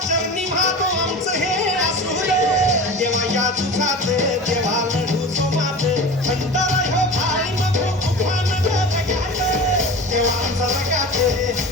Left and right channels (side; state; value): both; normal; correlation 0.33